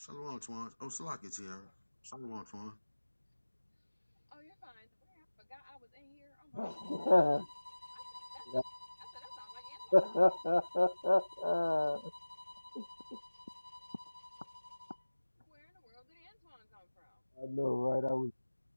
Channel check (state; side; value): inverted; both; correlation -1.00